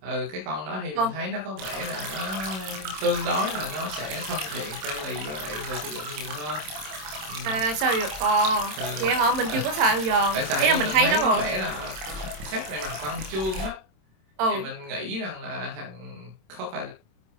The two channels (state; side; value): late; left; 26 ms